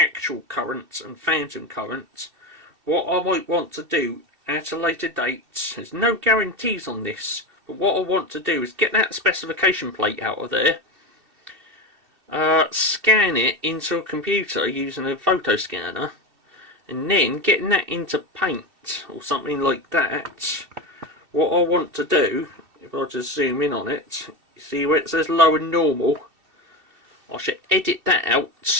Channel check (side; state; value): left; late; 2.7 ms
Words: currents and phantom currents. What I might want to do at a later date, there's no guarantees on this, but what I want to do is get that specification plate out of there, scan it into a computer using a photo scanner, and then getting that into Paint or something like that. What I want to do, if I just zoom in on it, you see where it says low and normal, I should edit that